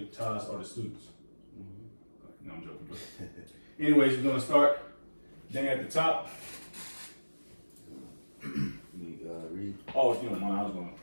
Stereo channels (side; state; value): both; inverted; correlation -1.00